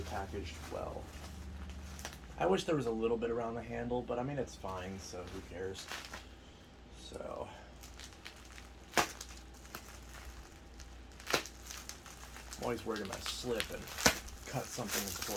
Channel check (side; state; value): both; identical; correlation 1.00